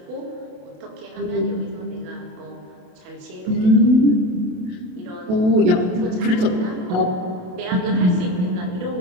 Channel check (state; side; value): late; left; 28 ms